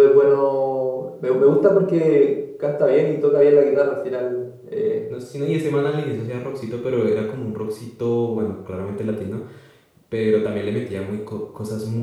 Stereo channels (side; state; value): both; identical; correlation 1.00